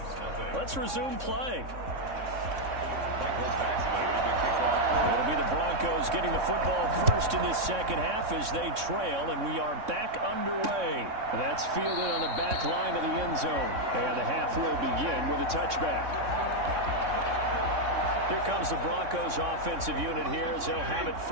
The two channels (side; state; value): left; late; 3.6 ms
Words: Let's resume play. It'll be the Broncos getting the football first in this second half as they trail, and we are back underway. That's fielded on the back line of the end zone. And the half will begin with a touchback. Here comes the Broncos offensive unit here as they'll have it